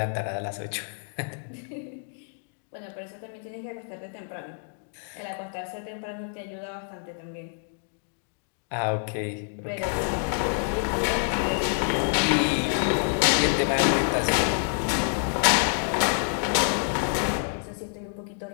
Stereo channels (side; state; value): right; silent; digital silence